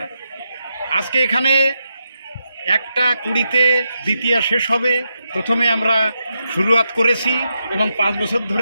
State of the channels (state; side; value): inverted; both; correlation -0.85